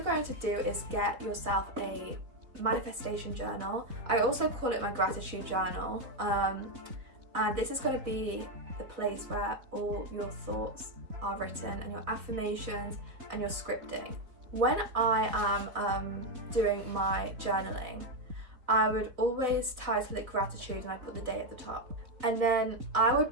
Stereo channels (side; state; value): left; late; 3.9 ms